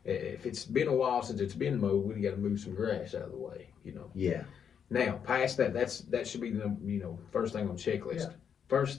If it's been a while since it's been mowed, we got to move some grass out of the way. Yeah. Now, past that, that should be the first thing on the checklist. Yeah.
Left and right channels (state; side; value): quieter; right; 7.7 dB